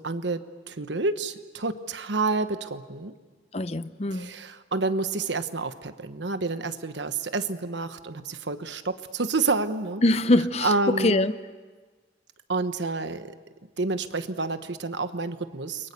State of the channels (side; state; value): both; normal; correlation 0.21